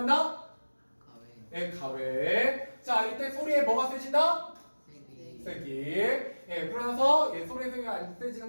가외. 가외. 자, 이때 소리에 뭐가 세진다? 세기. 그러나서 소리의 세기가 안 세지는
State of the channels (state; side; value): inverted; both; correlation -1.00